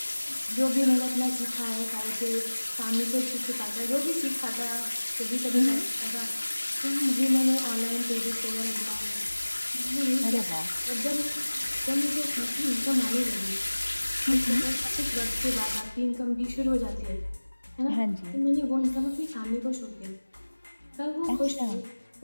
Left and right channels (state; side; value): inverted; both; correlation -1.00